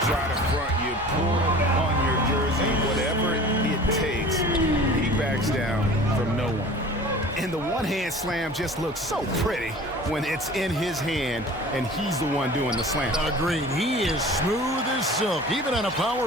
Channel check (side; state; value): both; normal; correlation 0.42